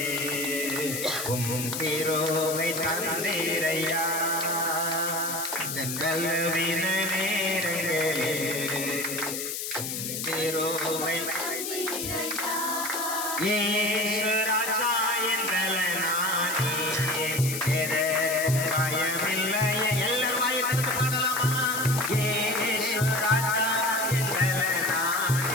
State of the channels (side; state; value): left; noise; hiss, 4 dB below the sound